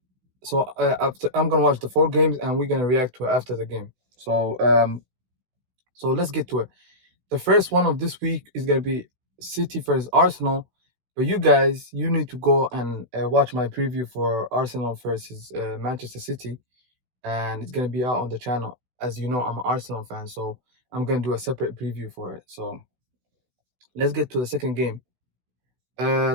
So after I'm gonna watch the 4 games, and we're gonna react to it after the game. So let's get to it. The first one of this week is gonna be City versus Arsenal. But you guys, you need to go and watch my preview for Arsenal versus Manchester City, and it's gonna be out on the channel. As you know, I'm an Arsenal fan, so I'm gonna do a separate preview for it. So let's get to the second game.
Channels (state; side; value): late; left; 16 ms